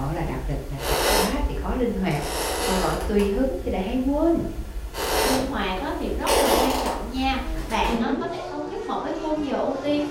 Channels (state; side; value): identical; both; correlation 1.00